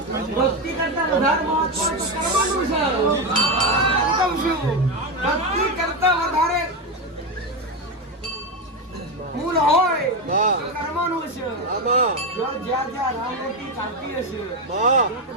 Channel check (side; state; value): both; normal; correlation 0.12